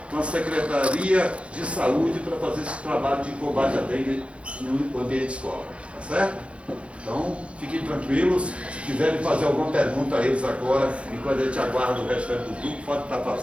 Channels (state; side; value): late; left; 0.061 ms